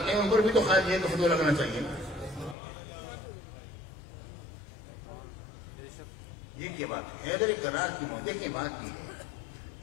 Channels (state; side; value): drops out; right; at 2.6 s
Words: ہیں ان پر بھی تو خاص یہ فتویٰ لگنا چاہیے نا. یہ کیا بات ہے حیدر کرار کی موت. دیکھیں بات یہ ہے